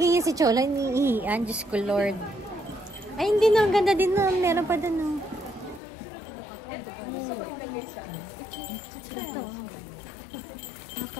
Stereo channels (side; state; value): right; drops out; at 5.8 s